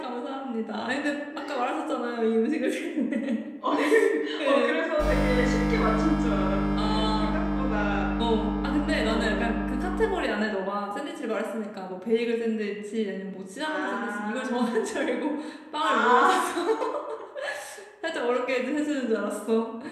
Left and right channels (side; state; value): both; identical; correlation 1.00